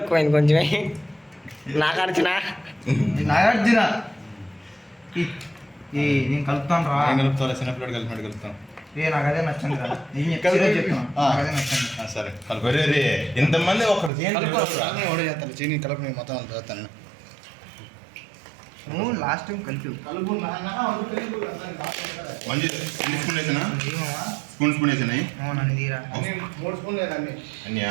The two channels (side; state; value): left; drops out; at 14.1 s